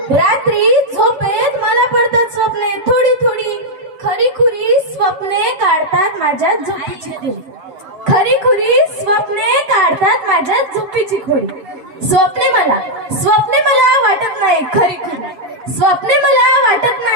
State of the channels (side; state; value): left; late; 7.8 ms